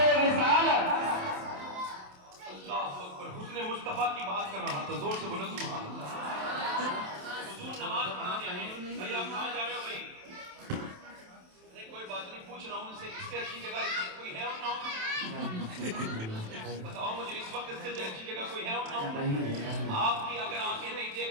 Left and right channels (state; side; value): late; left; 27 ms